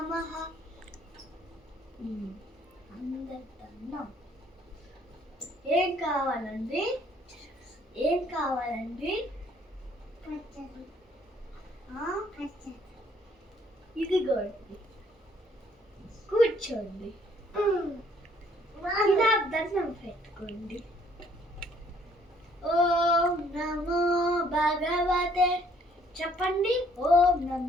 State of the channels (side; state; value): both; normal; correlation 0.63